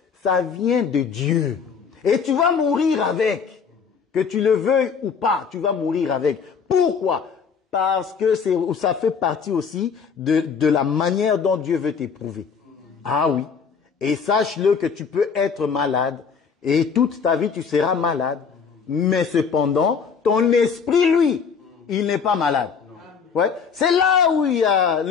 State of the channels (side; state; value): right; quieter; 6.1 dB